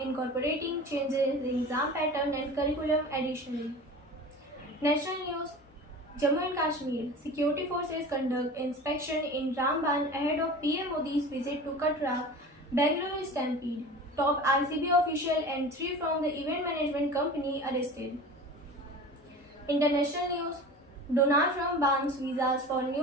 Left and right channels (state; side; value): normal; both; correlation 0.36